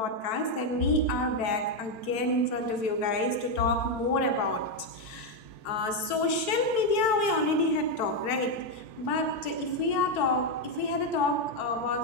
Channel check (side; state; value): right; late; 4.5 ms